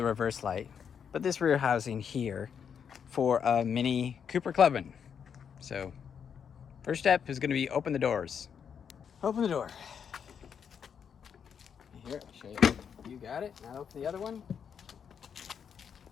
reverse light, but this rear housing here for a mini Cooper Clubman. So, first step is going to be open the doors. Open the door. Here, I'll show you. You got it. Now open the other one.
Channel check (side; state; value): right; quieter; 7.4 dB